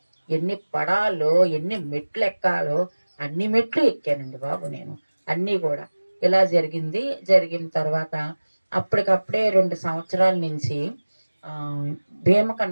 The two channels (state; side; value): inverted; both; correlation -1.00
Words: ఎన్ని పడాలో, ఎన్ని మెట్లు ఎక్కాలో అన్ని మెట్లు ఎక్కానండి బాబు నేను. అన్నీ కూడా ఇలా జరిగింది. జరిగిన తర్వాత అప్పటికప్పుడే 2 సంవత్సరాల నుంచి